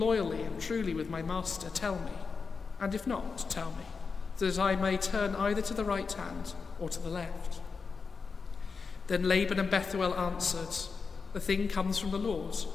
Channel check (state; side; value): quieter; right; 5.0 dB